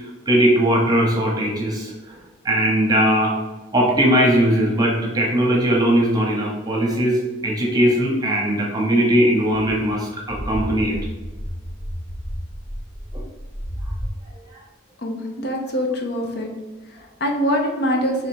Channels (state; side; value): normal; both; correlation 0.51